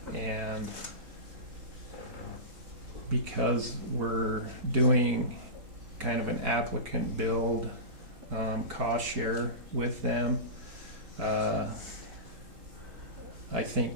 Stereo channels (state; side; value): late; left; 3.8 ms